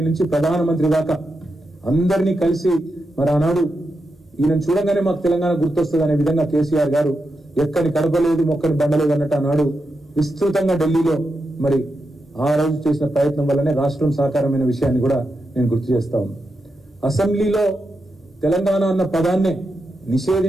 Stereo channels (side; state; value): both; normal; correlation 0.87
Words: నుంచి ప్రధానమంత్రి దాకా అందరినీ కలిసి మరి ఆనాడు ఈయన చూడగానే మాకు తెలంగాణ గుర్తొస్తుంది అనే విధంగా కేసీఆర్ గారు ఎక్కని కడపలేదు మొక్కని బండలేదు అన్నట్టు ఆనాడు విస్తృతంగా ఢిల్లీలో మరి ఆ రోజు చేసిన ప్రయత్నం వల్లనే రాష్ట్రం సాకారమైన విషయాన్ని కూడా నేను గుర్తు చేస్తా ఉన్నాను. అసెంబ్లీలో తెలంగాణ అన్న పదాన్నే